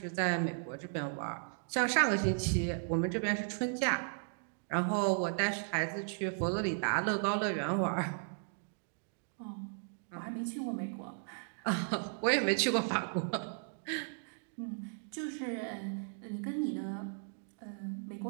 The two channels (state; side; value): silent; left; digital silence